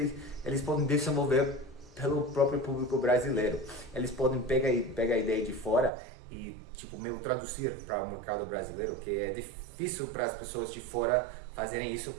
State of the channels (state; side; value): drops out; left; at 5.9 s